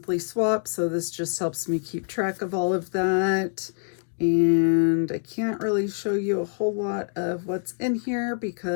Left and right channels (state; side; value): silent; right; 61 dB below the other